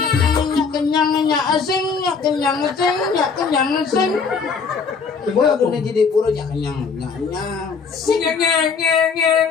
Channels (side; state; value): right; quieter; 5.4 dB